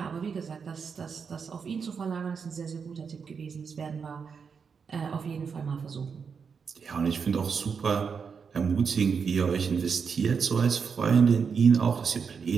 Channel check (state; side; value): quieter; left; 6.0 dB